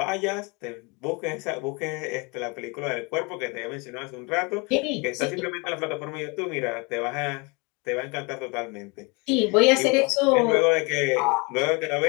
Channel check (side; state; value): right; quieter; 29.4 dB